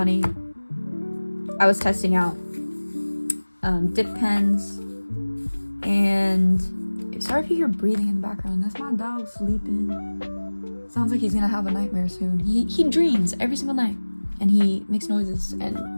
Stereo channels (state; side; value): inverted; both; correlation -1.00